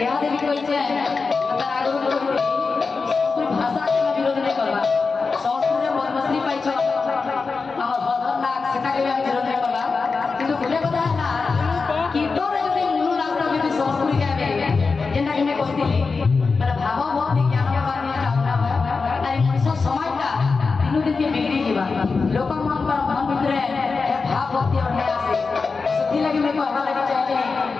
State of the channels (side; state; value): right; quieter; 4.5 dB